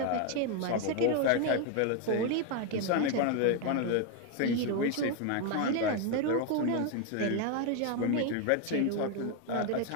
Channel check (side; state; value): both; different; correlation 0.01